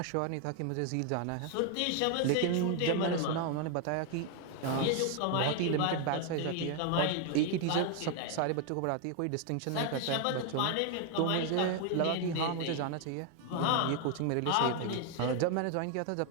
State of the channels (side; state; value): both; different; correlation 0.01